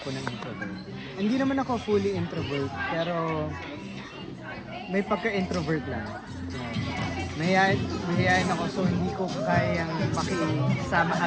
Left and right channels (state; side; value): identical; both; correlation 1.00